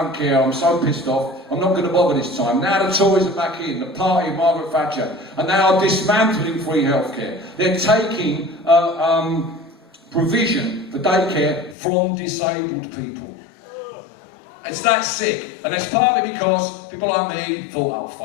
care, I'm so pissed off. I'm not going to bother this time. Now the Tories are back in, the party of Margaret Thatcher, and they are dismantling free healthcare. They're taking provision for daycare from disabled people. It's that sick, and it's partly because people like me thought, oh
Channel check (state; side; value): drops out; right; at 11.8 s